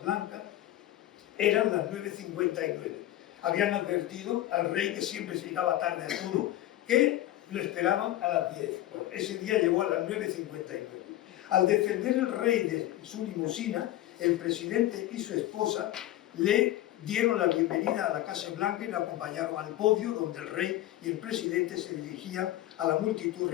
Blanca, eran las 9:59. Habían advertido al rey, que siempre se llegaba tarde a todo, que lo esperaban a las 10. Bueno, ese día llegó a las 9:59. Al defender el rey de su limusina, el presidente y su esposa le dieron la bienvenida a la Casa Blanca y la acompañaron al podio donde el rey y el presidente se dirigían a la multitud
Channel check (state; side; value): quieter; right; 14.5 dB